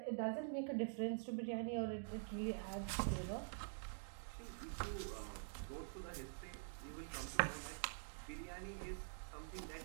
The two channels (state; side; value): silent; left; digital silence